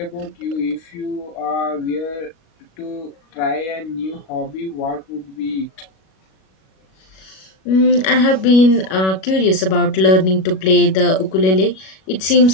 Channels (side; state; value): right; late; 37 ms